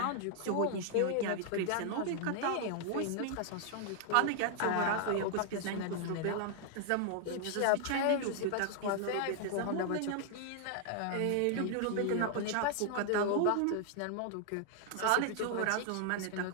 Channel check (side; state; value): both; different; correlation 0.00